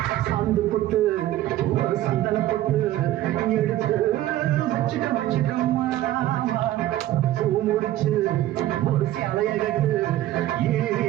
சாந்து போட்டு ஒரு சந்தன போட்டு எடுத்து வச்சுக்கம்மா பூ முடிச்சு ஒரு சேலைய கட்டு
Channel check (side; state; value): left; quieter; 14.2 dB